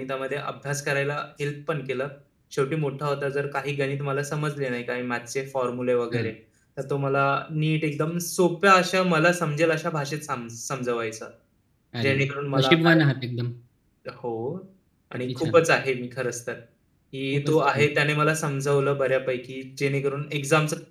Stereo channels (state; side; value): identical; both; correlation 1.00